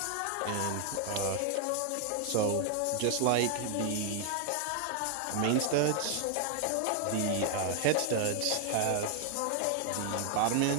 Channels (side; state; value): both; different; correlation 0.00